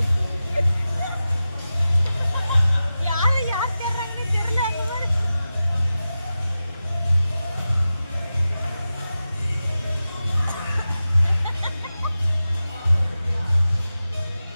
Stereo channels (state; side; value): inverted; both; correlation -0.93